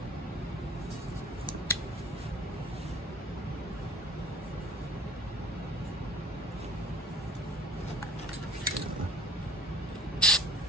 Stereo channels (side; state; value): both; normal; correlation 0.47